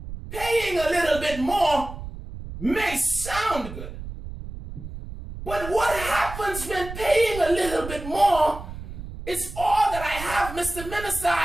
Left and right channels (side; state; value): right; noise; rumble, 10 dB below the sound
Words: paying a little bit more may sound good. But what happens when paying a little bit more is all that I have, Mr. Minister?